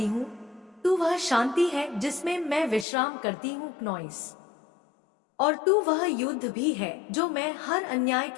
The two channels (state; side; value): drops out; right; at 2.9 s